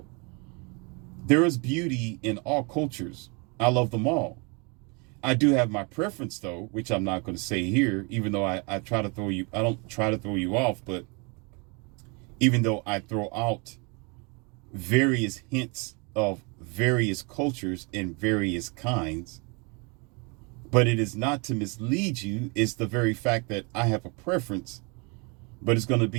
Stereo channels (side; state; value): left; quieter; 31.7 dB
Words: There is beauty in all cultures. I love them all. I do have my preference, though, which I'm not going to say here, even though I don't try to throw you off, but even though I throw out various hints of various cultures and various kinds, but it is not to mislead you. It's the very fact that I have a preference, but it's going to